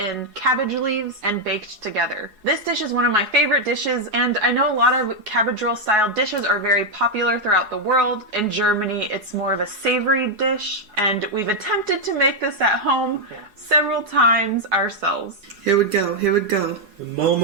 cabbage leaves and baked together. This dish is one of my favorite dishes, and I know a lot of cabbage roll style dishes are very popular throughout the world. In Germany, it's more of a savory dish, and we've attempted to make this at home several times ourselves. Here we go, here we go. The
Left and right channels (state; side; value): late; left; 4.8 ms